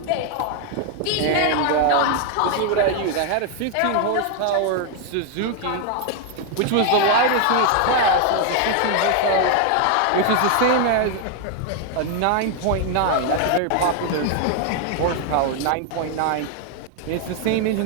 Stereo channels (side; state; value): both; different; correlation 0.00